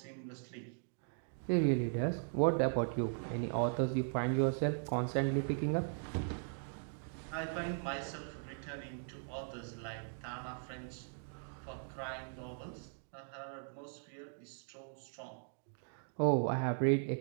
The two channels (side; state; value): left; silent; digital silence